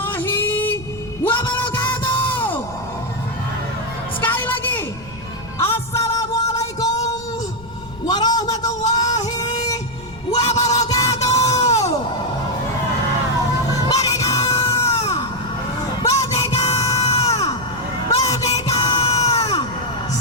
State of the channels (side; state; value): left; noise; rumble, 19 dB below the sound